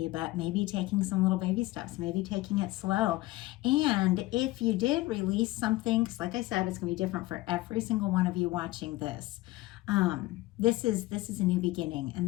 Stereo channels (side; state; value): right; quieter; 19.0 dB